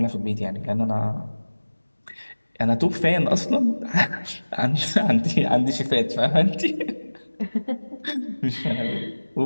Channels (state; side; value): inverted; both; correlation -1.00